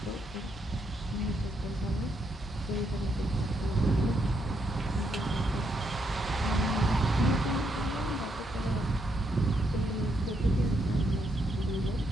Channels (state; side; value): normal; both; correlation 0.77